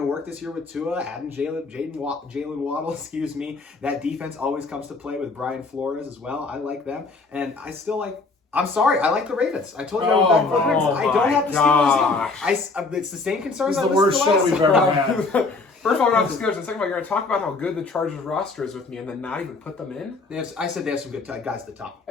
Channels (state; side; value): quieter; right; 3.8 dB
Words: to work this year with Tua, adding Jalen Waddle. Excuse me. That defense always comes to play with Brian Flores as well. I like them, and I still like. I'm sorry, I like the Ravens. I told you I went back and forth. I don't have the Steelers in. It's the same concerns. It's the worst show we've ever had. First of all, we're not the Steelers, and second of all, you're going to talk about how good the Chargers roster is with me, and then not even put them in. I said they have some good guys at the top.